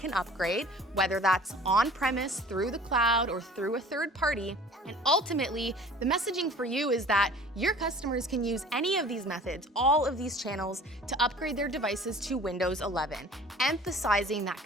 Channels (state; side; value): normal; both; correlation 0.46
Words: upgrade, whether that's on-premise, through the cloud, or through a third party. And ultimately, the messaging for you is that your customers can use any of these methods, all of these channels, to upgrade their devices to Windows 11, emphasizing that